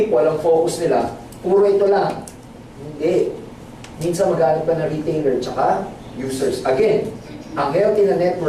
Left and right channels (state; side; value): identical; both; correlation 1.00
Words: ang focus nila, puro ito lang. Hindi. Minsan maghanap ka na retailer tsaka users. Again, ang healthy na